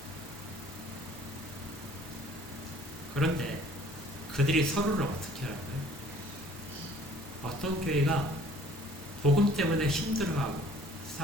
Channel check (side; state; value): both; normal; correlation 0.54